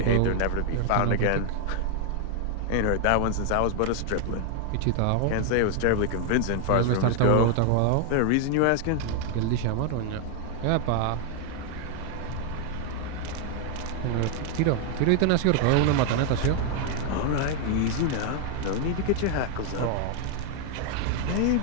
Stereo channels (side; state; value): both; different; correlation 0.00